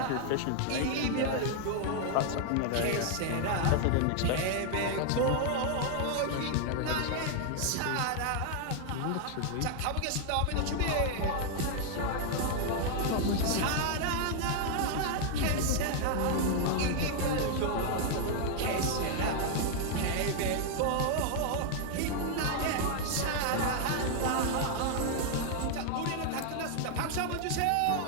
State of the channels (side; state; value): both; different; correlation 0.00